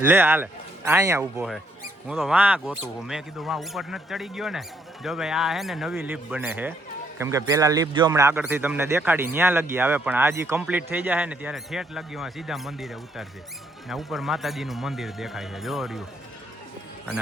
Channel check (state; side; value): normal; both; correlation 0.71